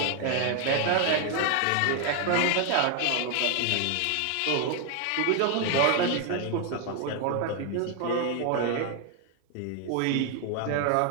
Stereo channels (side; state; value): both; different; correlation 0.01